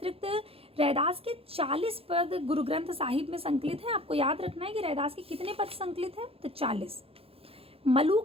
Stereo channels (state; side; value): late; left; 0.28 ms